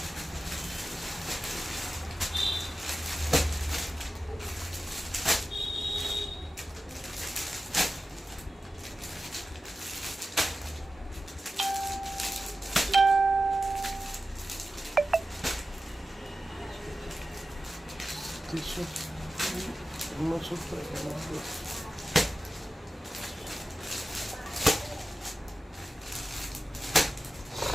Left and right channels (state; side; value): normal; both; correlation 0.94